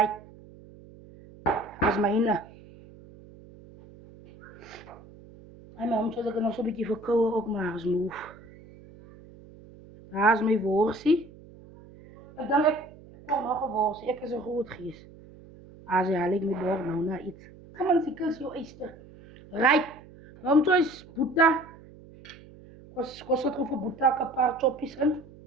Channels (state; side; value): noise; right; hum, 21 dB below the sound